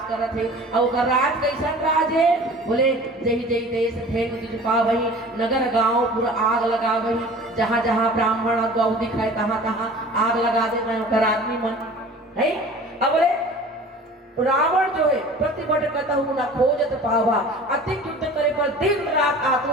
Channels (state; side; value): normal; both; correlation 0.43